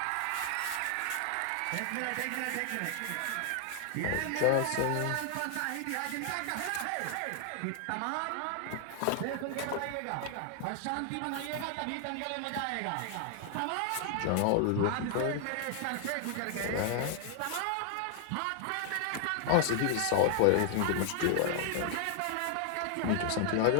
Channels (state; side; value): different; both; correlation 0.00